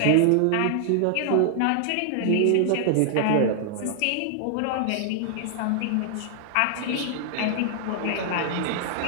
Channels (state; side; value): different; both; correlation -0.01